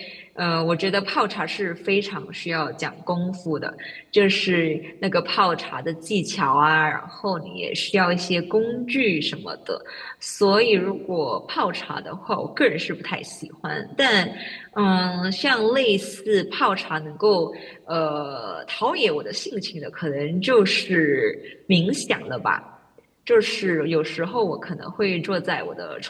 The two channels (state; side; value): identical; both; correlation 1.00